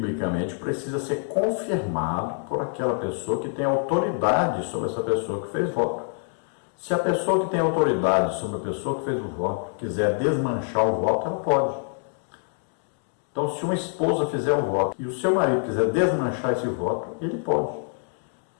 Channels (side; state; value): right; silent; 57 dB below the other